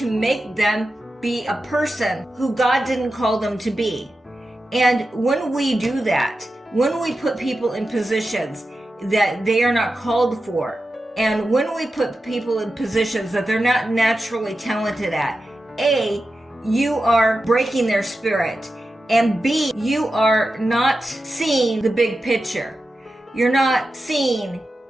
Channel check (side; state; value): both; normal; correlation 0.91